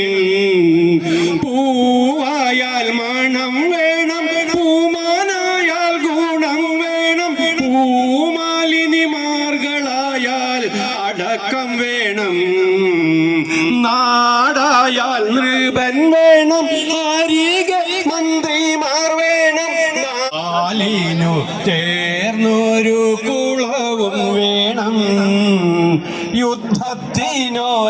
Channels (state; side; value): identical; both; correlation 1.00